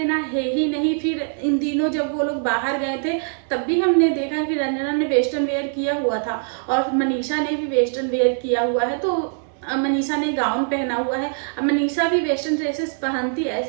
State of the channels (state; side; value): silent; left; 59 dB below the other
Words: है ही नहीं। फिर इन दिनों जब वो लोग बाहर गए थे तब भी हमने देखा कि रंजना ने वेस्टर्न वेयर किया हुआ था और मनीषा ने भी वेस्टर्न वेयर किया हुआ है। तो मनीषा ने गाउन पहना हुआ है। अब मनीषा भी वेस्टर्न ड्रेसेस पहनती है,